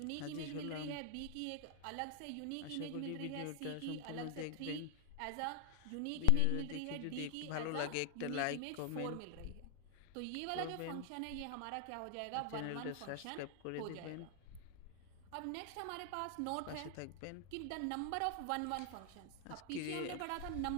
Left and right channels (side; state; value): both; different; correlation 0.00